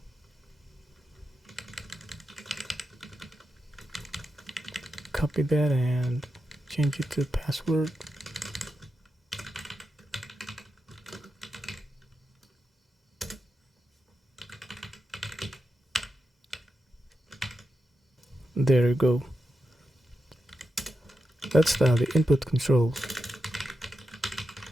Copy that and change it to password. There you go. Let's style the input controls.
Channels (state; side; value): normal; both; correlation 0.88